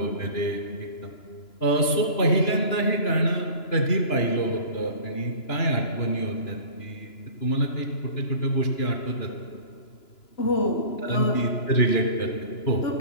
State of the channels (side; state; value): right; late; 2.9 ms